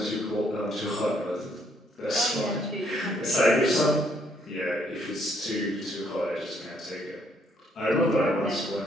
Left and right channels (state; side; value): normal; both; correlation 0.69